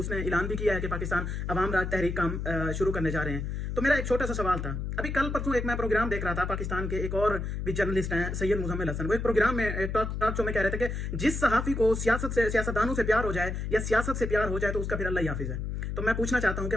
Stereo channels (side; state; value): left; noise; hum, 3 dB below the sound